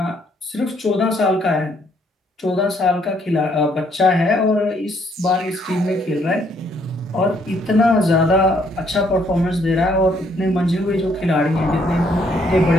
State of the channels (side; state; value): both; normal; correlation 0.68